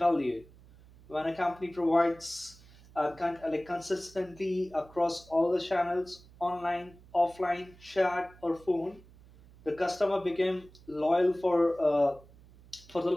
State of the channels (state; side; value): noise; right; hum, 24 dB below the sound